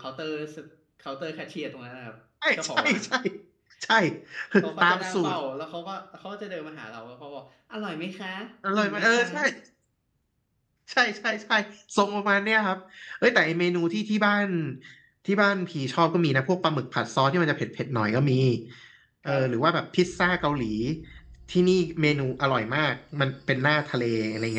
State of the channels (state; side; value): identical; both; correlation 1.00